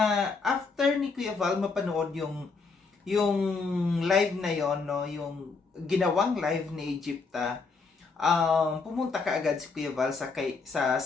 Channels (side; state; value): right; quieter; 4.5 dB